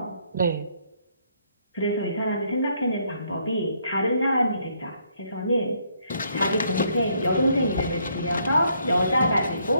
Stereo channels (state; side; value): inverted; both; correlation -0.70